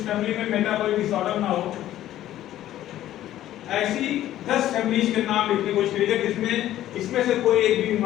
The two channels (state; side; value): quieter; right; 13.1 dB